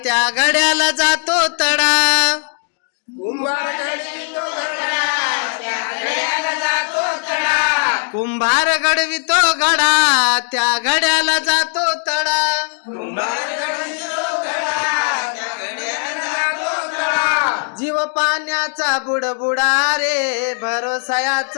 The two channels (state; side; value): silent; right; 58 dB below the other